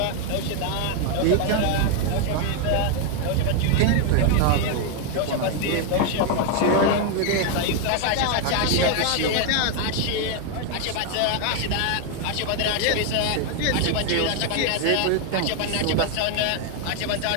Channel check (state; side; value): different; both; correlation 0.00